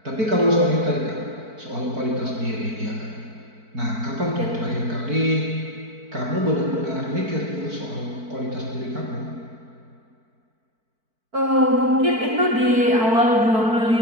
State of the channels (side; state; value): left; late; 4.5 ms